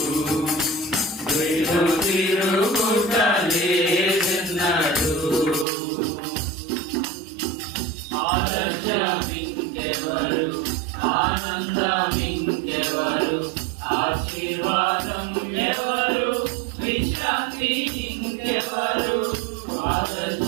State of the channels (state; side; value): drops out; left; at 5.7 s